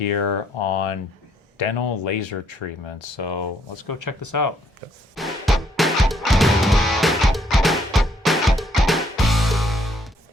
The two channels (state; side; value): normal; both; correlation 0.69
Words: on dental laser treatment. So let's go check this out.